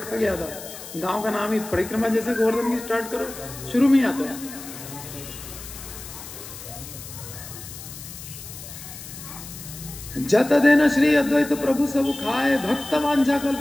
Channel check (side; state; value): left; noise; hiss, 13 dB below the sound